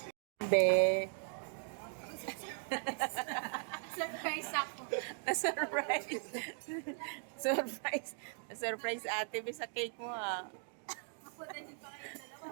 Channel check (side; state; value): left; silent; 52 dB below the other